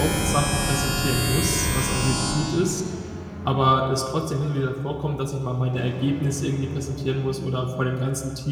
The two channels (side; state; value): both; identical; correlation 1.00